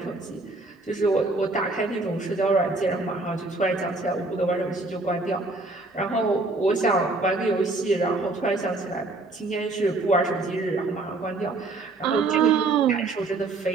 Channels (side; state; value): left; quieter; 3.3 dB